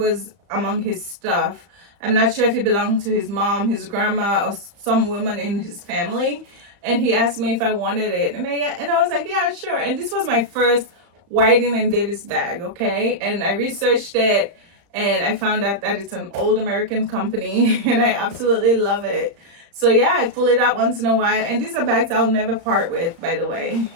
among his stuff. I'm not sure if it belonged to his mom, his grandma, or some woman in his family, and he asked me if I wanted it, and I was like, yeah, sure. And this was my first Whiting & Davis bag, okay? And I researched it, and I found out that it's an old American company, and I absolutely love it. So yeah, I pull it out once in a while, and these are bags I'll never part with, by the way.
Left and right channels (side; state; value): left; late; 35 ms